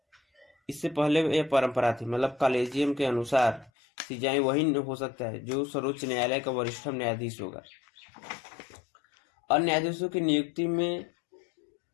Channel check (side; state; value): right; drops out; at 3.7 s